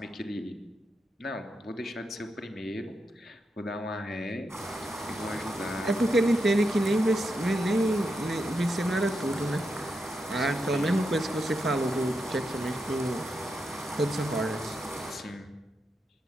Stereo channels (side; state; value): both; normal; correlation 0.85